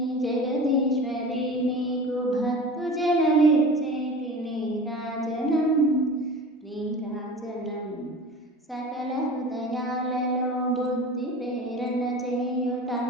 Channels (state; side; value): normal; both; correlation 0.36